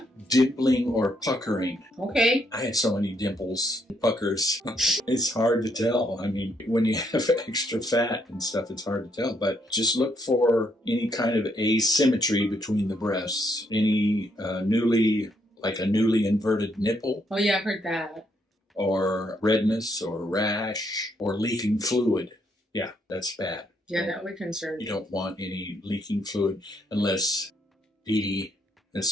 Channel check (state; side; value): normal; both; correlation 0.73